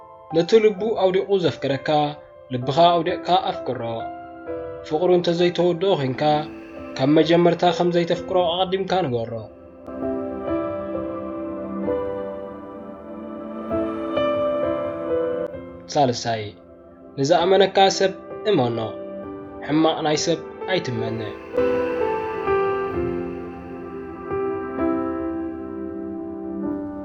ነቲ ልቡ ኣውዲቑ ዘፍቅረካ ልብኻ ኣውዲቕካ ኣፍቅሮ ፍቕሩ እንተዘይተወድኦ ኮንካ ካብ መጀመርታ ከም ዘይተፍቅሮ ኣቐዲምካ ንገሮ ሳልሳይ ንዝኣመነካ ሰብ እመኖ ሕማቕ ናይ ሰብ ኣይትመነ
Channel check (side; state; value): both; identical; correlation 1.00